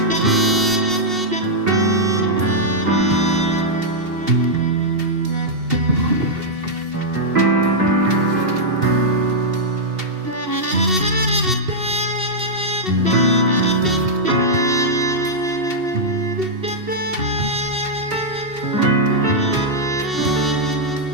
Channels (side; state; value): left; late; 2.7 ms